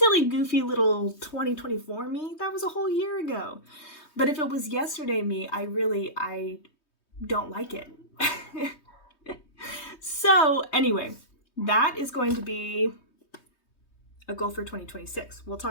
goofy little 2024 me. That was a whole year ago. But if it was yesterday me, I don't like it. So anyway, that is going to be a goal for 2026. We'll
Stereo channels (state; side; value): late; right; 3.2 ms